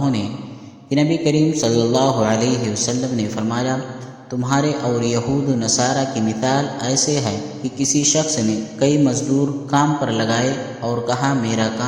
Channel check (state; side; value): identical; both; correlation 1.00